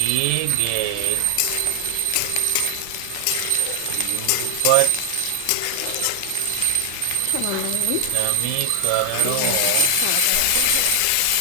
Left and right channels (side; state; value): both; different; correlation 0.00